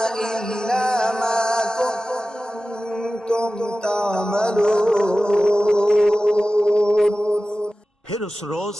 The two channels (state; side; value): normal; both; correlation 0.95